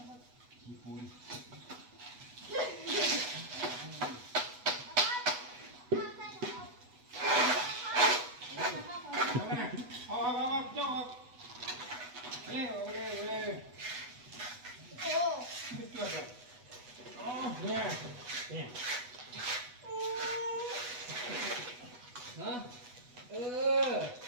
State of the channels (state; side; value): late; left; 8.1 ms